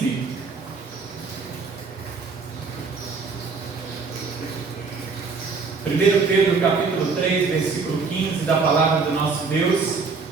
Primeiro Pedro, capítulo 3, versículo 15, da palavra do nosso Deus.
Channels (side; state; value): left; quieter; 4.6 dB